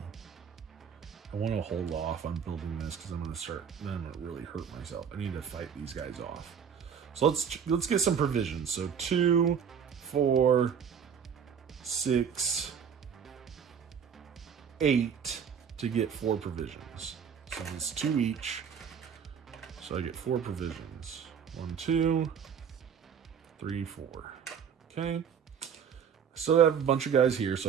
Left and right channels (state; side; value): quieter; left; 7.4 dB